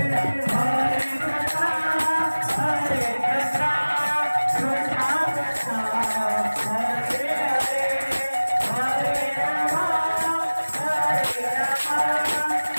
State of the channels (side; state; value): both; inverted; correlation -1.00